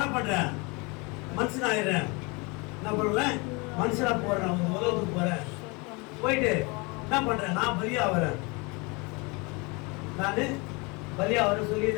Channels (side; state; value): right; quieter; 28.4 dB